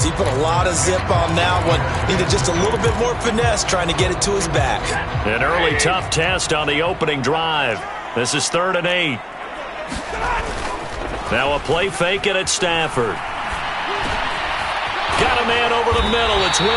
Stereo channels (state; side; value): identical; both; correlation 1.00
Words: He put a lot of zip on that one. Needed just a little bit more finesse trying to get it to his back. An early tough test on the opening drive. This is 3rd and 8. Now a play fake it at Stafford. Got a man over the middle. It's